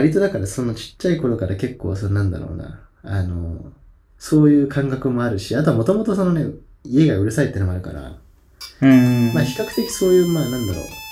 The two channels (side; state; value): both; identical; correlation 1.00